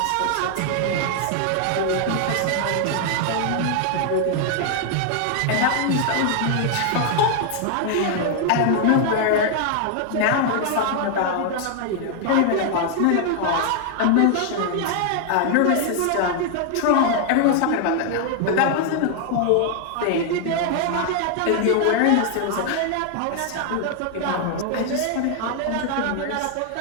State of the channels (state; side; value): different; both; correlation 0.00